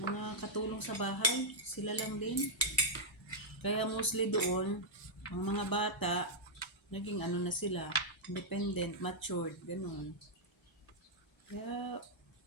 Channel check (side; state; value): both; normal; correlation -0.08